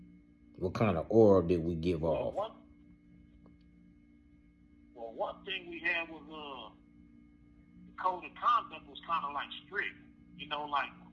What kind of aura did we give off? One thing we had was the code of conduct was kind of like strict. You know, like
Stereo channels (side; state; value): both; identical; correlation 1.00